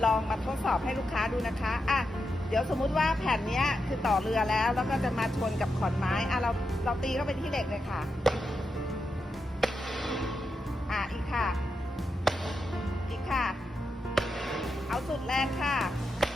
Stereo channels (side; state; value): both; normal; correlation 0.87